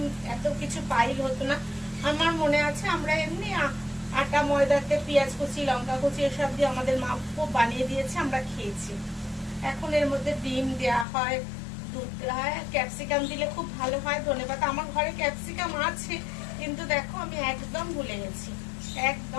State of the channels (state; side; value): drops out; right; at 11.1 s